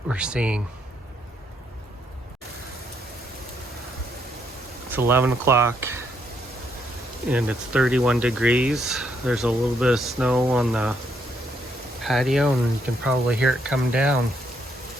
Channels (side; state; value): both; normal; correlation 0.74